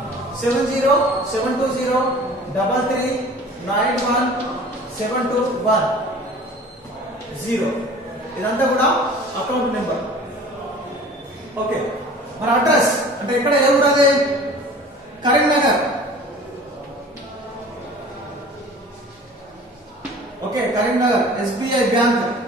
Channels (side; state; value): both; normal; correlation 0.44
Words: 707203391721 ఇదంతా కూడా అకౌంట్ నెంబర్. ఓకే, మన అడ్రస్ అంటే ఇక్కడ ఏ ఊరు? అది Karimnagar. Okay, Karimnagar SBI bank,